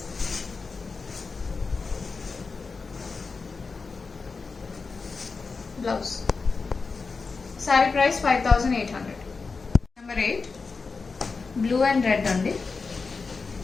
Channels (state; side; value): quieter; right; 4.5 dB